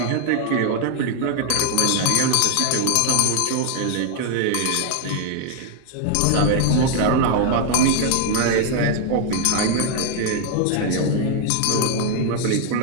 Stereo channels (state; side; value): different; both; correlation 0.00